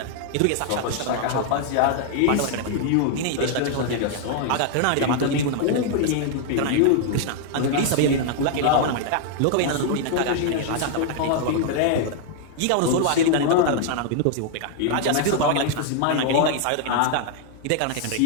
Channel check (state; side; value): different; both; correlation 0.00